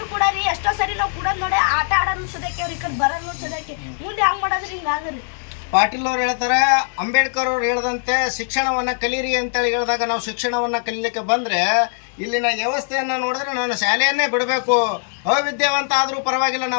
ಕೂಡ ರೀ ಎಷ್ಟೋ ಸರಿ ನಾವು ಕೂಡ ನೋಡಿ ಆಟ ಆಡೋನು ಸದಕ್ಕೆ, ಅವ್ರ ಈ ಕಡೆ ಬರೋನು ಸದಕ್ಕೆ. ಮುಂದೆ ಹಂಗೆ ಮಾಡೋದ್ರಿ ಹಿಂಗಾದ್ರಿ. ಪಾಟೀಲ್ ಅವ್ರು ಹೇಳ್ತಾರೆ, ಅಂಬೇಡ್ಕರ್ ಅವ್ರು ಹೇಳ್ದಂತೆ ಶಿಕ್ಷಣವನ್ನು ಕಲೀರಿ ಅಂತೇಳಿ ಹೇಳಿದಾಗ ನಾವು ಶಿಕ್ಷಣವನ್ನು ಕಲೀಲಿಕ್ಕೆ ಬಂದರೆ ಇಲ್ಲಿನ ವ್ಯವಸ್ಥೆಯನ್ನು ನೋಡಿದ್ರೆ ನಾನು ಶಾಲೆಯನ್ನೇ ಬಿಡಬೇಕು, ಅವಿದ್ಯಾವಂತ ಆದರೂ ಪರವಾಗಿಲ್ಲ,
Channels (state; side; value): silent; right; 65 dB below the other